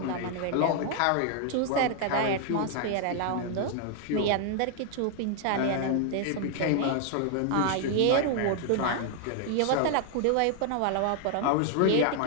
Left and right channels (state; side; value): different; both; correlation 0.00